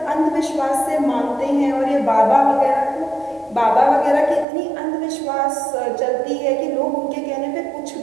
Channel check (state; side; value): drops out; left; at 4.5 s